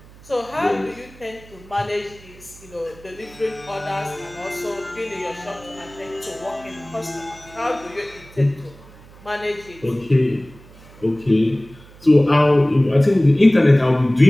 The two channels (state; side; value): noise; right; hum, 22 dB below the sound